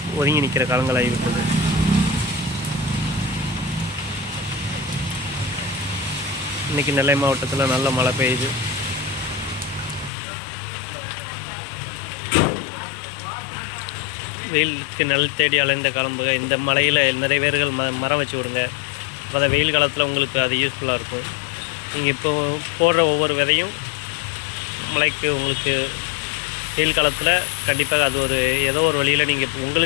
ஒதுங்கி நிற்கிற காலங்கள் ஆகிவிட்டது. இன்றைக்கி நெல்லை மாவட்டத்தில் நல்ல மழை பெய்யுது. வெயிலுக்கு நெல் தேடி அலைந்த காலம் போக இந்த மலையில் நிறைய பேர்கள் மரம் வச்சு விடுங்க. அப்போ தான் வெயில் காலத்தில் உங்களுக்கு அது யூஸ்ஃபுல்லாக இருக்கும். நீங்கள் இப்போ போடுற ஒவ்வொரு விதையும் மழைக்கு உங்களுக்கு வெயில் காலத்தில் கண்டிப்பாக அது ஏதோ ஒரு வழியில் நீங்கள்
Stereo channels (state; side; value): drops out; right; at 10.1 s